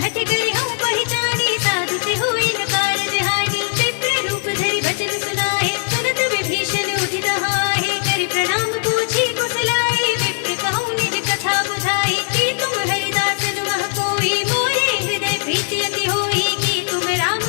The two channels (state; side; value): silent; right; 60 dB below the other